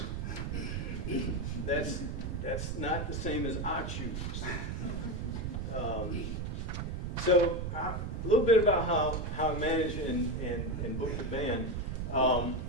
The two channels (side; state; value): right; noise; rumble, 3 dB below the sound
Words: That's not the same as I choose. So a little bit about how I manage and book the band.